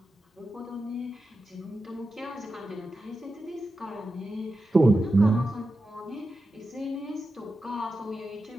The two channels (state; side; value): normal; both; correlation 0.91